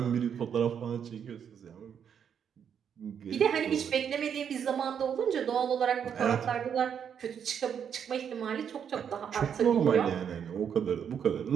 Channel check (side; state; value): left; quieter; 8.0 dB